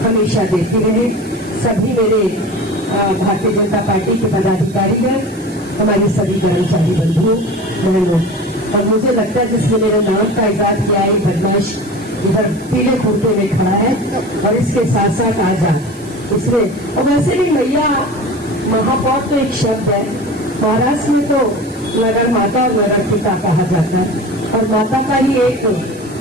हमेशा देती रहे। सभी मेरे भारतीय जनता पार्टी के पदाधिकारी हैं, हमारी सभी कर्मचारी बंधुओं बहनों, और मुझे लगता है जिसने मेरे नाम का इजाद किया है, बदमाश इधर पीले कुर्ते में खड़ा है और इसके साथ साथ आजाद इसमें। और वैसे भी मैया महापौर तो एक शब्द है, महाराष्ट्र में तो नगर माता और नगर पिता कहा जाता है और माता का ही एक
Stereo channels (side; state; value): right; noise; hiss, 23 dB below the sound